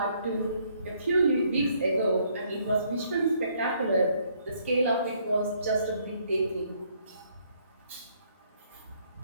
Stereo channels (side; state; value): both; inverted; correlation -0.67